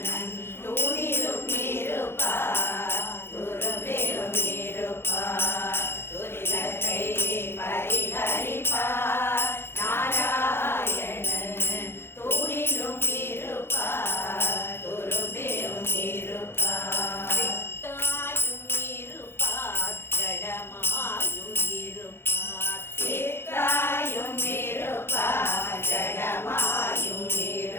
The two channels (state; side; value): late; right; 0.11 ms